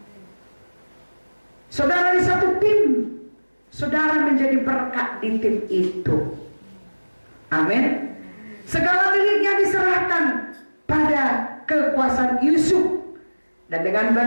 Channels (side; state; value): both; inverted; correlation -1.00